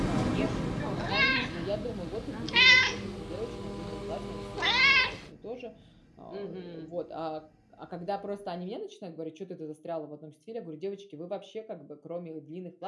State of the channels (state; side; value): identical; both; correlation 1.00